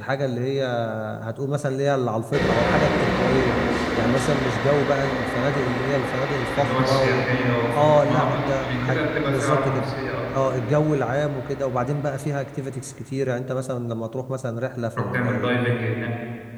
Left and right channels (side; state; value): both; identical; correlation 1.00